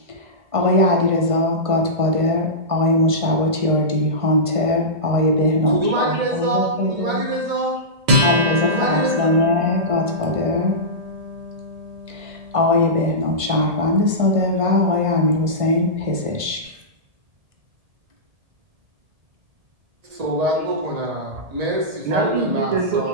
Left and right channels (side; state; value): left; late; 1.5 ms